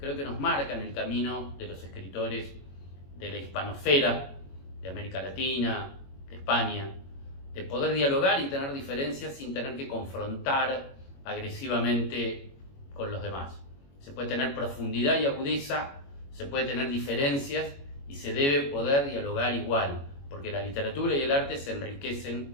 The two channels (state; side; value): late; right; 21 ms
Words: que nos marcan el camino de los escritores de la hispanosfera, de América Latina, de España, de poder dialogar y tener diferencias sin tener que confrontar agresivamente con los demás. Se puede tener profundidad y agudeza, se puede tener diferencias y se debe poder dialogar igual, porque la literatura y el arte se